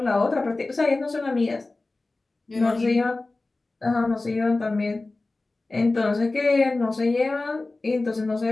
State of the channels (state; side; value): quieter; right; 3.2 dB